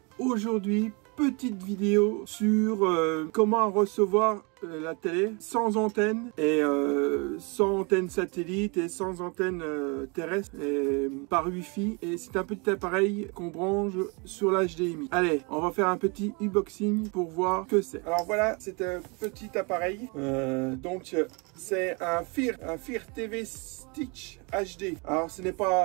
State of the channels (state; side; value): quieter; left; 30.9 dB